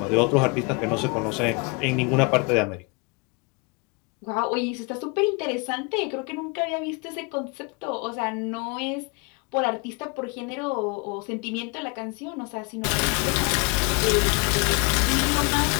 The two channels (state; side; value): quieter; right; 31.4 dB